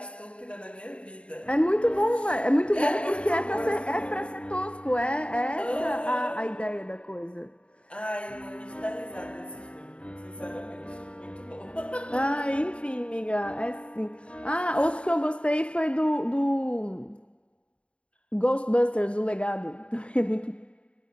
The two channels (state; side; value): late; right; 0.059 ms